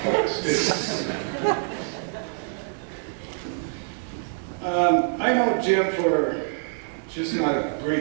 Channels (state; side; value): silent; left; digital silence